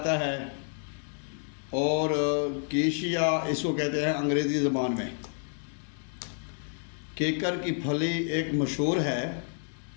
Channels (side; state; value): right; silent; 58 dB below the other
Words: है और कीशिया इसको कहते हैं अंग्रेज़ी ज़बान में। किकर की फली एक मशहूर है।